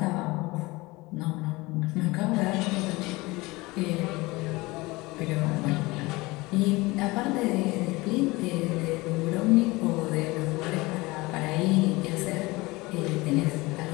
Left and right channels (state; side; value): quieter; right; 22.3 dB